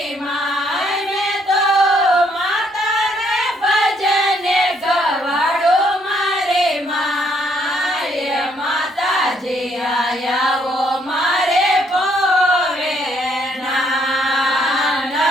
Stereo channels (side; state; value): both; normal; correlation 0.69